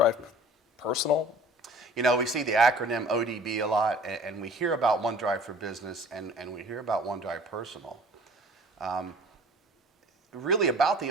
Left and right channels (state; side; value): normal; both; correlation 0.48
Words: Personal? We see the acronym ODB a lot, and we hear about OneDrive for Business and we hear about OneDrive Personal. Really, about the